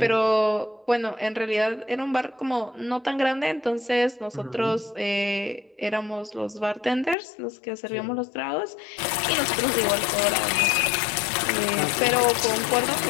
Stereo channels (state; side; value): drops out; right; at 7.2 s